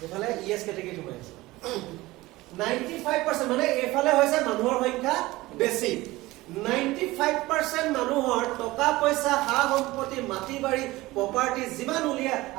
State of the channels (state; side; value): quieter; left; 19.3 dB